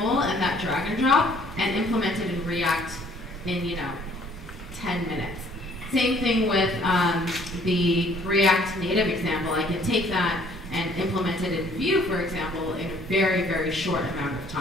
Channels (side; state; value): both; normal; correlation 0.59